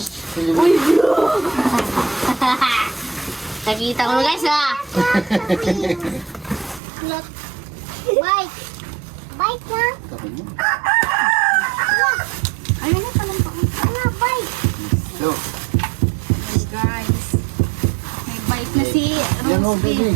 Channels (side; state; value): left; drops out; at 6.8 s